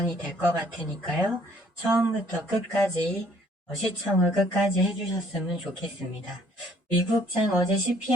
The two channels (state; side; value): normal; both; correlation 0.61